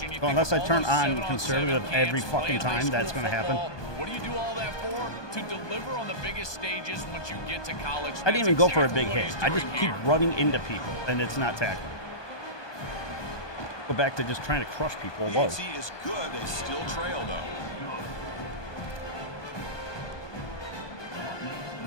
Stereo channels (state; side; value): late; right; 1.2 ms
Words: Well, unless I turn on conservative every fucking time, that's going to happen. What do you do all that for? To deliver on the biggest stages once you get to college. I didn't even go for a big hit. I just keep running into people, and it's not tackling. Go back to just trying to crush people. Whoa. The is good. They still trail, though.